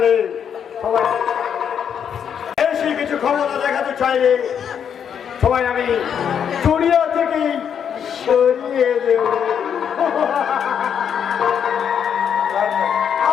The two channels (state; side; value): quieter; right; 8.0 dB